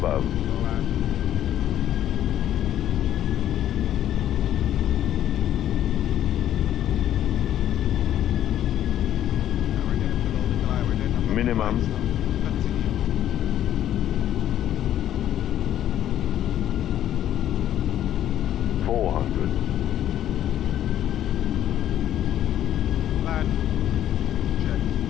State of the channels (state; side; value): quieter; right; 11.5 dB